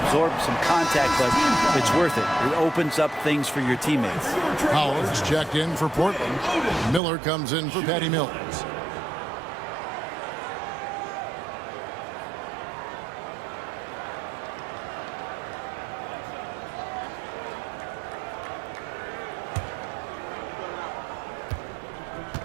some contact, but it's worth it. It opens up things for your teammates. Howard's checked in for Portland. Miller comes in for Patty Mills.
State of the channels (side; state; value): left; drops out; at 7.0 s